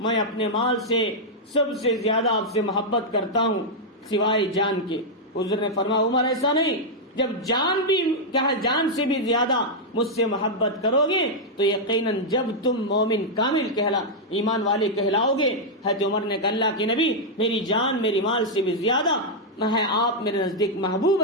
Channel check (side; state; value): both; normal; correlation -0.04